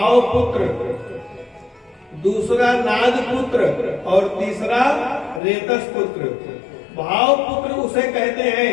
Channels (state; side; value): drops out; right; at 5.4 s